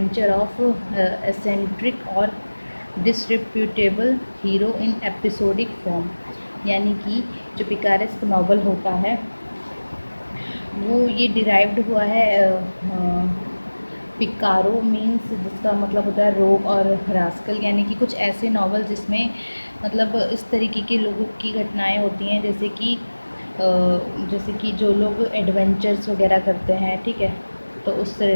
of eccentric और डिसरिप्यूटेबल हीरो इन एपिसोडिक फॉर्म। यानी कि जो पिकारेस्क नावल होता है वो ये डिराइव्ड हुआ है पिकारो मीन्स, जिसका मतलब होता है रोग, और रास्कल यानी कि कुछ ऐसे नावल जिसमें मतलब इस तरीके के लोगों की घटनाएं होती हैं, जैसे कि जो लोग एडवेंचर्स वगैरह करते हैं। ठीक है। तो उससे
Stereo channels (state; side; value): inverted; both; correlation -1.00